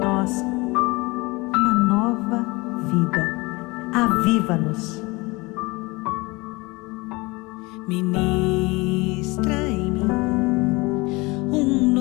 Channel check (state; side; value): quieter; right; 24.2 dB